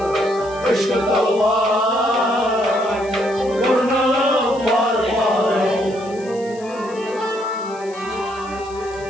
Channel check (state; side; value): noise; left; hiss, 22 dB below the sound